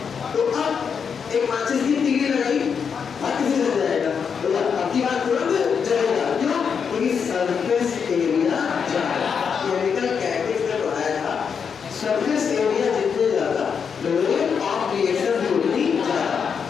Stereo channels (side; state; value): right; quieter; 6.6 dB